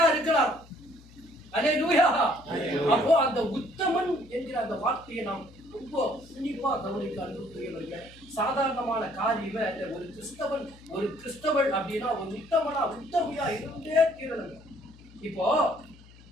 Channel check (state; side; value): noise; left; hum, 22 dB below the sound